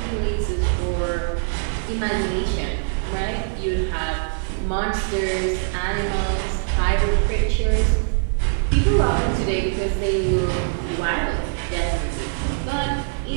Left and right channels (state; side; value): silent; left; 58 dB below the other